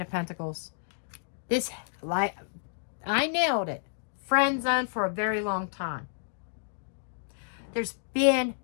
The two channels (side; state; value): right; silent; digital silence